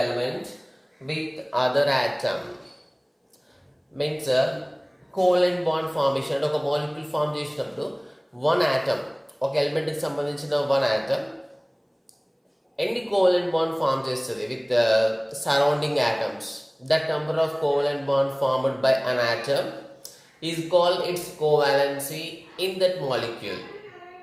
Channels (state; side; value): identical; both; correlation 1.00